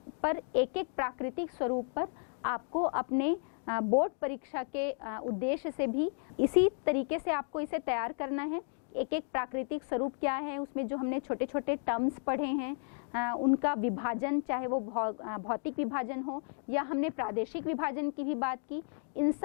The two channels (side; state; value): right; silent; 56 dB below the other